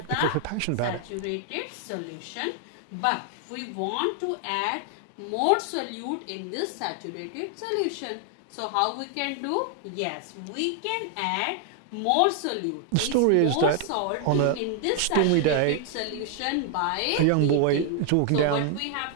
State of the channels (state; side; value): different; both; correlation 0.00